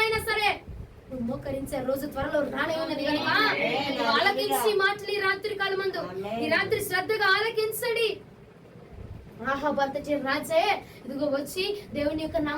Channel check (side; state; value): both; identical; correlation 1.00